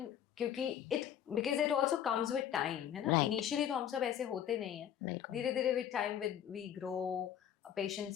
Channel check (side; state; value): right; quieter; 9.9 dB